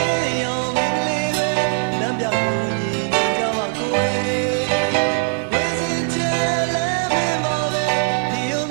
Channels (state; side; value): silent; left; digital silence